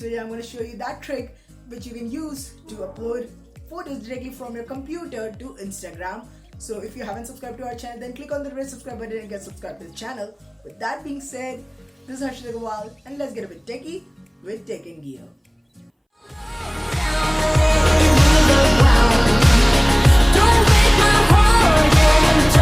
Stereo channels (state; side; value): identical; both; correlation 1.00